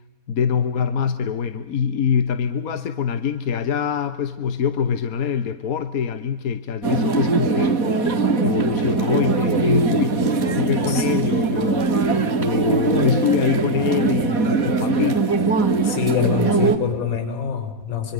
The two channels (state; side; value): late; right; 4.2 ms